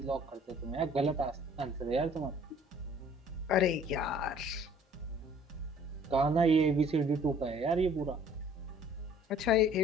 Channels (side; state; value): both; normal; correlation 0.54